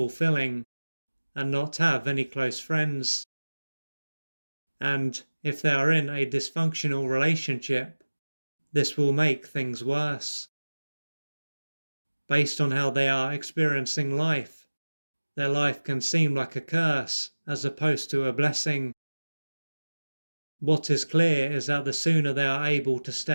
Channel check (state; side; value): inverted; both; correlation -1.00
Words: and not have any close friends. And if they are in a dysfunctional relationship, this will make things worse. Based on how they are experiencing life, their life can seem like a curse as opposed to a blessing. What is clear is that the sooner they are able to